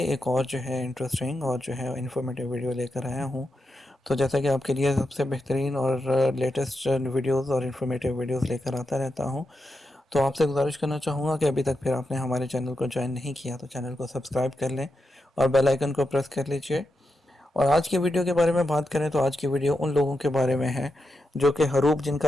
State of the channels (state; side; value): normal; both; correlation 0.86